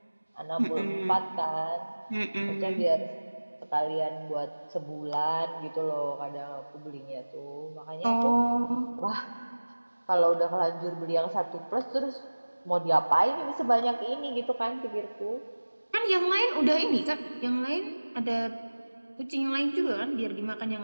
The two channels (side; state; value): both; inverted; correlation -1.00